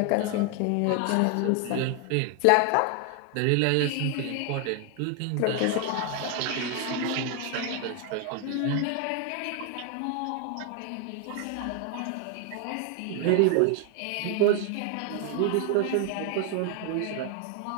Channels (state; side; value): different; both; correlation 0.01